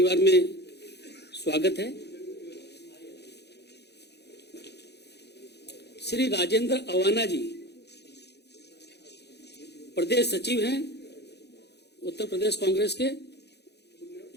में स्वागत है। श्री राजेंद्र अवाना जी प्रदेश सचिव हैं उत्तर प्रदेश कांग्रेस के,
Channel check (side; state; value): right; late; 0.49 ms